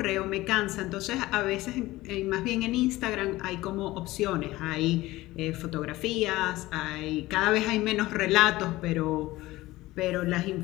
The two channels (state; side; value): quieter; right; 18.1 dB